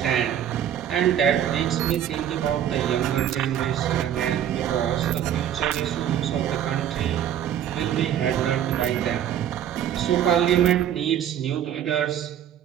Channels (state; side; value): quieter; left; 10.1 dB